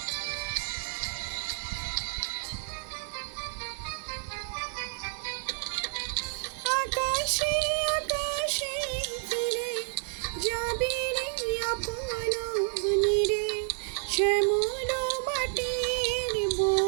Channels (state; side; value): silent; left; 58 dB below the other